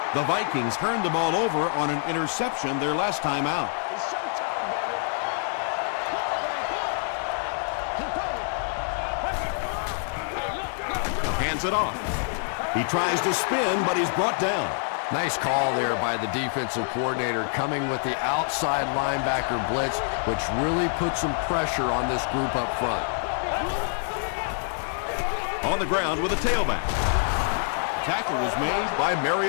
The Vikings turned the ball over on an interception their last time out. Hands it off. He tries to spin, but he's brought down. Nice call there by the defensive coordinator, coming with the outside linebacker blitz, which really puts some pressure on this group up front. On the ground with a tailback. Tackle was made by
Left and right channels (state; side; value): silent; right; 61 dB below the other